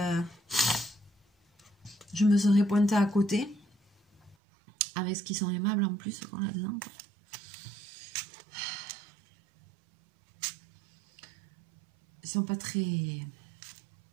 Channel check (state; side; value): drops out; left; at 4.4 s